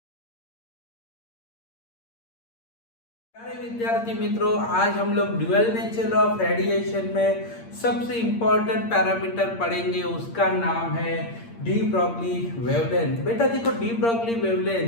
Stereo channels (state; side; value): late; right; 8.7 ms